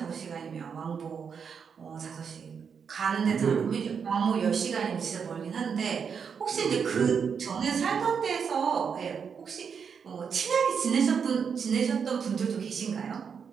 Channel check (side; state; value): left; quieter; 6.6 dB